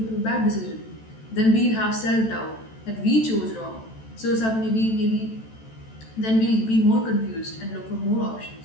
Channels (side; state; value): right; late; 14 ms